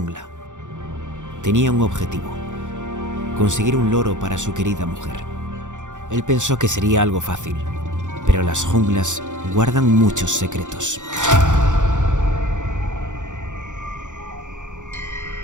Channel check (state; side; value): late; left; 0.86 ms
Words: Tenía un objetivo: conseguir un loro para su querida mujer. Él pensó que sería algo fácil, pero las junglas guardan muchos secretos.